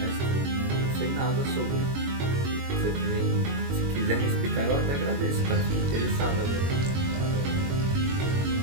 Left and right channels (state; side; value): late; left; 22 ms